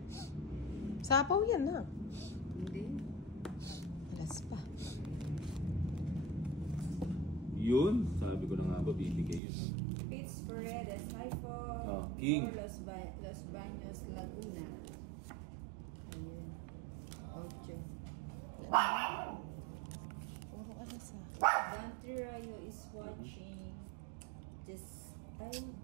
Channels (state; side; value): drops out; left; at 9.4 s